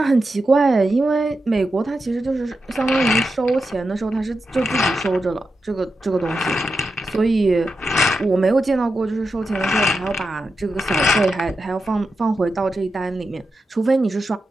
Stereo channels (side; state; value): both; normal; correlation 0.88